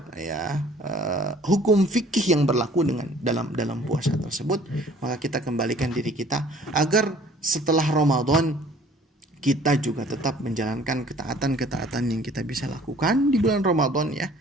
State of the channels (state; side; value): normal; both; correlation 0.54